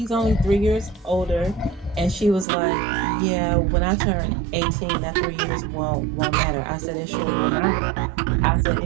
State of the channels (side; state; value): left; drops out; at 2.5 s